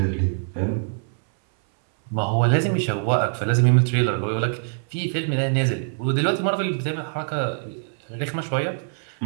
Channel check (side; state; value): left; silent; 59 dB below the other